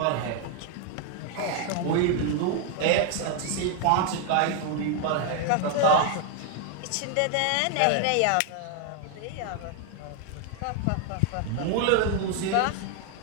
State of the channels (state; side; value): different; both; correlation 0.00